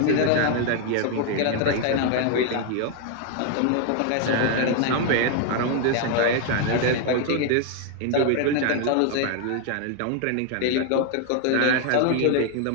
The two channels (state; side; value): different; both; correlation 0.01